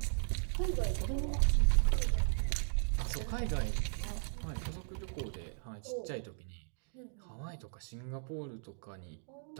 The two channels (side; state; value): left; silent; digital silence